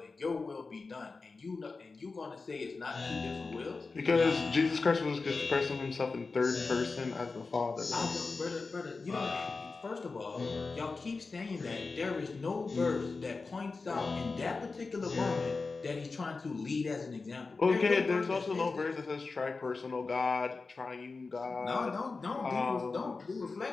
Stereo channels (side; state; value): right; quieter; 4.1 dB